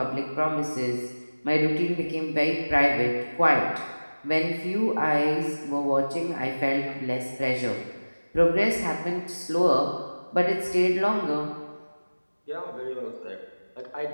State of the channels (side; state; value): both; inverted; correlation -1.00